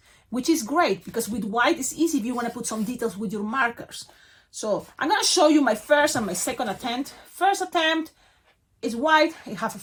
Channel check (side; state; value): both; identical; correlation 1.00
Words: which is great because with white it's easy if you want to put some details with your markers. So I'm gonna show you my first and my second attempt. First attempt is white, it has a